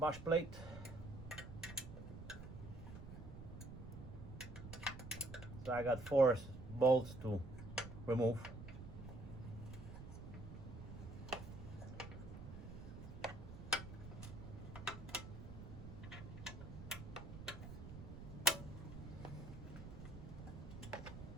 plate. So I got 4 bolts to remove.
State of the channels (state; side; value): noise; right; rumble, 10 dB below the sound